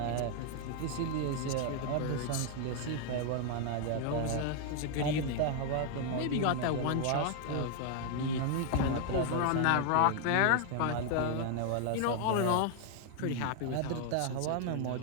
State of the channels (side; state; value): both; different; correlation 0.00